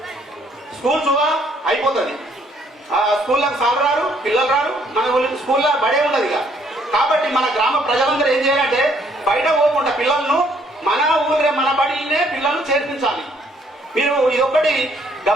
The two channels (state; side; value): normal; both; correlation 0.66